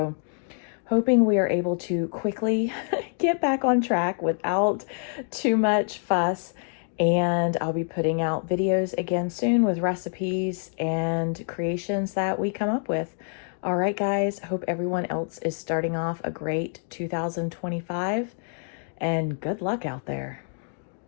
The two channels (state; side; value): silent; right; 55 dB below the other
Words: hoping we are able to quickly get back on track without too much fuss. And I'll be putting out videos again soon with recipes and creations that we come up with. All right, guys, hope everyone else is starting off a great 2025 and good luck out there.